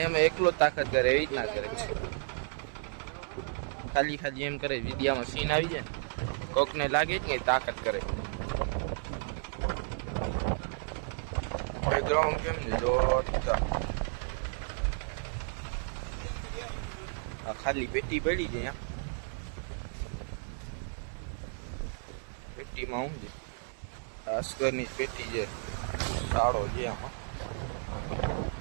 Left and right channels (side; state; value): left; silent; 56 dB below the other